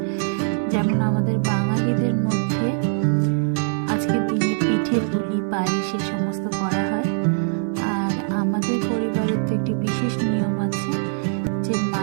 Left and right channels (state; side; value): silent; left; 63 dB below the other